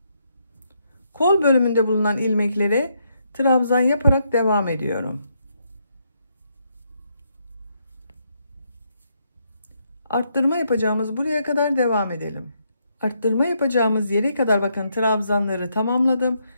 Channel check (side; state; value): both; inverted; correlation -0.77